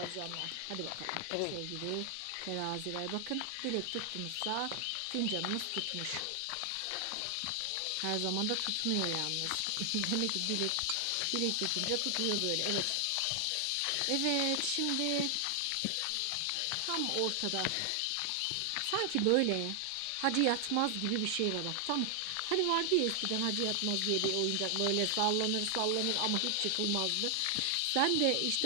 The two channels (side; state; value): both; different; correlation 0.00